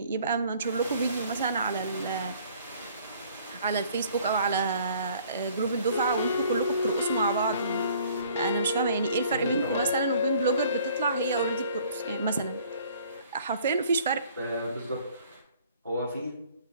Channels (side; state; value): both; inverted; correlation -0.56